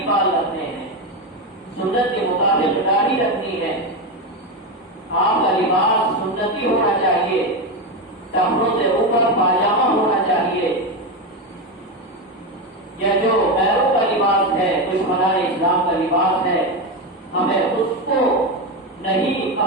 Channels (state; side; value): normal; both; correlation 0.13